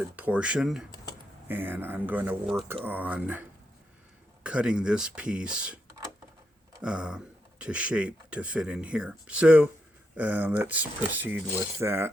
portion, and I'm going to work on cutting this piece to shape to fit in here. So let's proceed with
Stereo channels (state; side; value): normal; both; correlation 0.82